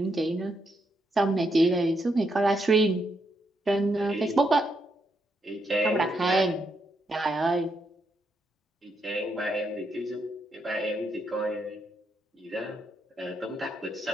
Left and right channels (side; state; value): both; normal; correlation 0.79